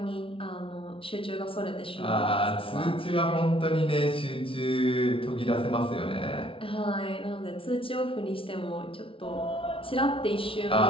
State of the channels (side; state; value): right; late; 0.26 ms